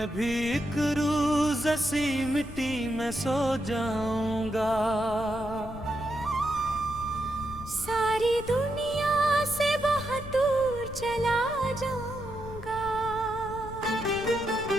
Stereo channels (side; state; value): left; noise; rumble, 12 dB below the sound